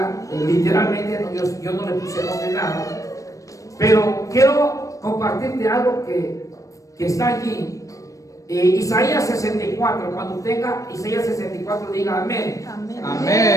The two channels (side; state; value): right; late; 0.16 ms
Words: literalmente, yo no le puse nombre nada, pero quiero compartirte algo que está allí. Isaías 64, cuando tenga Isaías 64, diga amén. Amén.